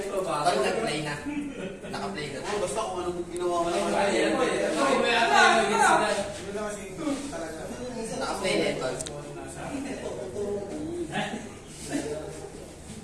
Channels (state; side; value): identical; both; correlation 1.00